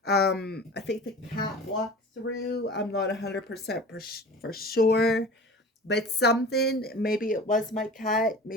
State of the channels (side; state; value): both; normal; correlation 0.38